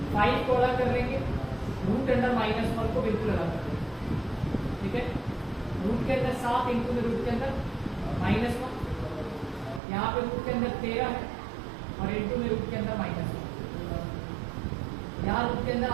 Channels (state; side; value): drops out; left; at 9.8 s